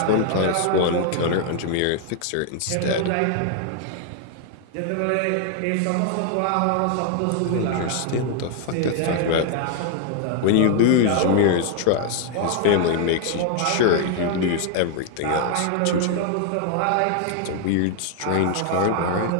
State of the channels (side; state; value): both; different; correlation 0.00